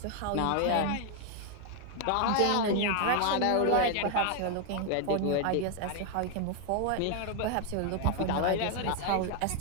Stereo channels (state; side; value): different; both; correlation 0.01